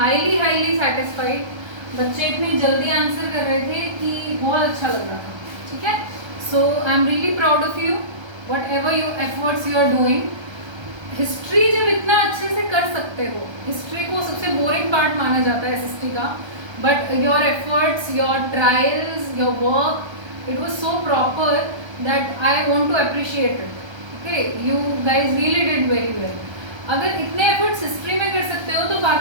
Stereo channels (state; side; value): late; left; 1.3 ms